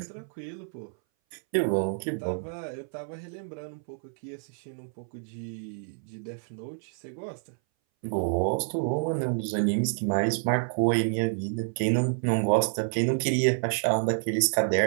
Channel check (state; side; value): silent; left; 59 dB below the other